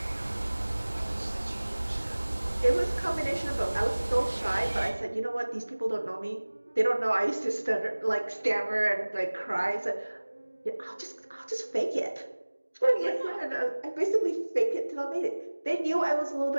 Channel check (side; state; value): both; inverted; correlation -1.00